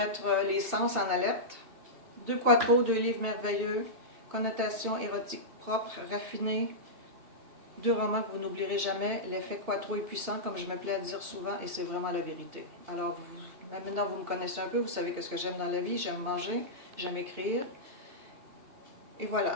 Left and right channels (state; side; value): late; left; 2.7 ms